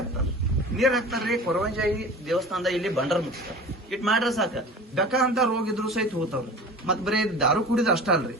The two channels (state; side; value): normal; both; correlation 0.38